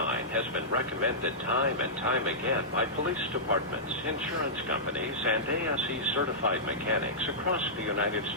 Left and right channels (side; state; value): both; normal; correlation -0.15